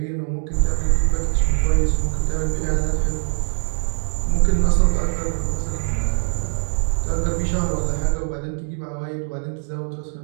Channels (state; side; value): silent; left; 59 dB below the other